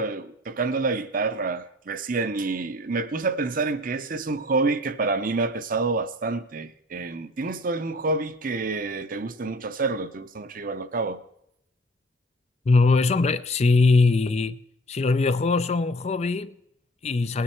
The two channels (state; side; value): normal; both; correlation 0.49